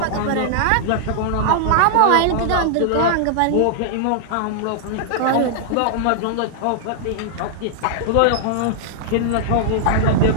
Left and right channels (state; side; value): different; both; correlation -0.01